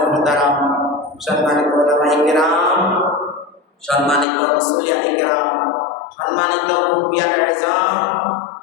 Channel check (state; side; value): drops out; right; at 4.2 s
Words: محترم সম্মানিত উলামায়ে কিরাম সম্মানিত মুসল্লিয়ানে কিরাম সম্মানিত মুরব্বিয়ানে ইজাম